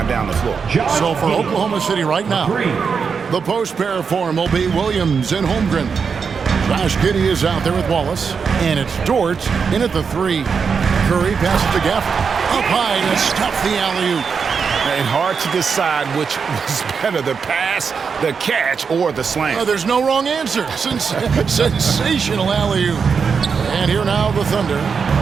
down the floor. So for Oklahoma City right now, the post pair form will be Williams and Holmgren. Josh Giddey is out there with Wallace, and it's Dort in at the 3. Curry passes to Gafford. Up high to stuff the alley-oop. And hard to decide which was better, the pass, the catch, or the slam. There's no wrong answer. Sensational alley-oop. And here now the Thunder.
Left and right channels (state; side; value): quieter; left; 5.9 dB